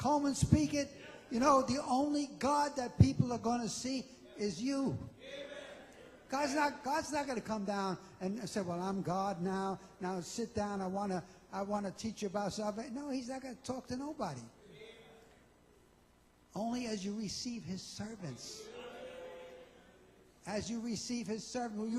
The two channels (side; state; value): both; identical; correlation 1.00